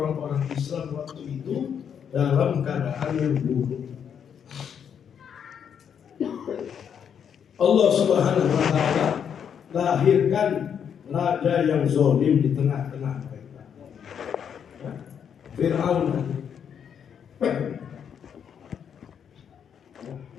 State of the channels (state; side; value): quieter; right; 7.9 dB